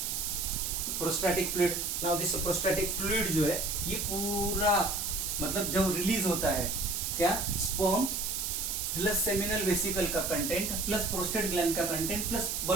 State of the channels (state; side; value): noise; right; hiss, 1 dB below the sound